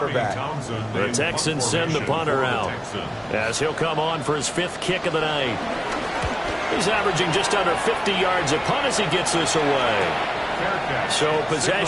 The Texans send the punter out as he'll come on for his 5th kick of the night. He's averaging just under 50 yards a punt as he gets this away. So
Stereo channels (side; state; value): both; identical; correlation 1.00